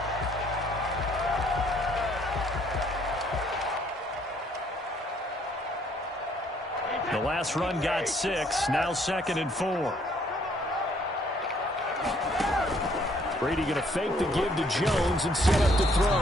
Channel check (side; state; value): both; normal; correlation 0.65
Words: The last run got 6, now second and 4. Brady going to fake the give to Jones and set up to throw.